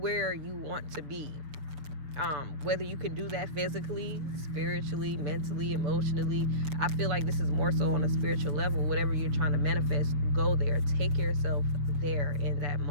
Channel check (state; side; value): late; left; 6.6 ms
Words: to be. Whether you can do that physically, spiritually, mentally, emotionally. I feel like this is more so on a spiritual level. Whatever you're trying to manifest, go there. Take yourself there in that